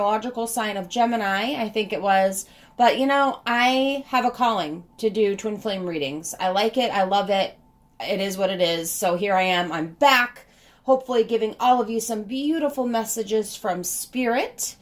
sign of Gemini, I think it was. But, I have a calling to do twin flame readings. I like it. I love it. It is what it is. So here I am. I'm back, hopefully giving all of you some beautiful messages from Spirit.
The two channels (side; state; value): both; identical; correlation 1.00